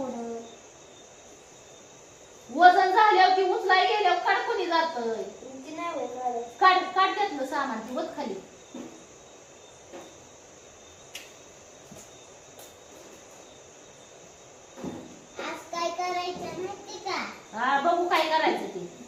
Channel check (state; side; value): identical; both; correlation 1.00